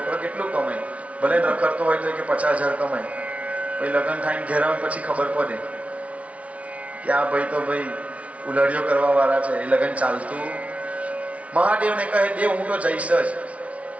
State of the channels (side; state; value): left; late; 0.065 ms